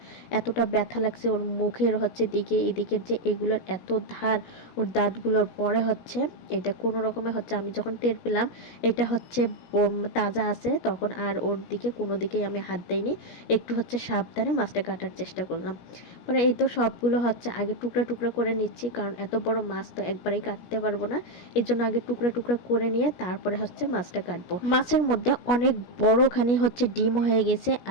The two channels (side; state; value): right; late; 17 ms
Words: এতটা ব্যথা লাগছে ওর মুখের দিকে, এদিকের যে এগুলোর এত ধার ওর দাঁতগুলোর পরে এটা কোনো রকমে আমি যখন টের পেলাম এটা তাজা আছে, তখন আর ওর দিকে কোনো দিকেই আমি হাত দেইনি। একটু সাবধানে মাছটা কাটার চেষ্টা করলাম। পরে এই তো সবগুলো আগে টুকরা টুকরা করে নিচ্ছি, কারণ এত বড় মাছ তো একবারেই কাটতে পারবো না। এর জন্য আগে টুকরা টুকরা করে নিয়ে তারপরে মাছটা কাটবো। মাছের মধ্যে অনেক বড়খানি ডিম হয়ে গেছে,